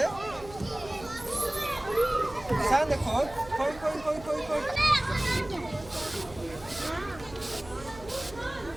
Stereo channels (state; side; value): noise; right; hum, 17 dB below the sound